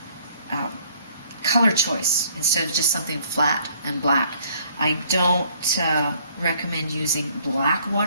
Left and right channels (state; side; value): inverted; both; correlation -0.60